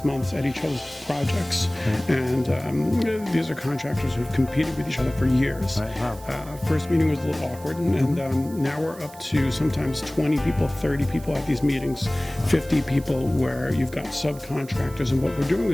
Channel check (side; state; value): right; noise; hiss, 20 dB below the sound